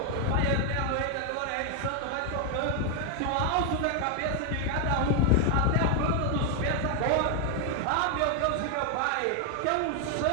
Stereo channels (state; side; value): different; both; correlation 0.00